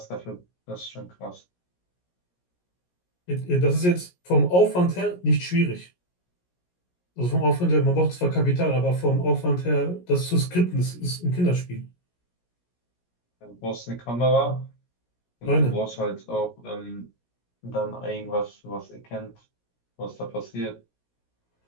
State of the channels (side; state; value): right; late; 17 ms